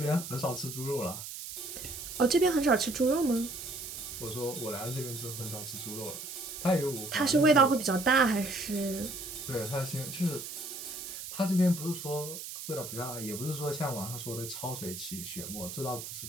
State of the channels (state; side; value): noise; right; hiss, 9 dB below the sound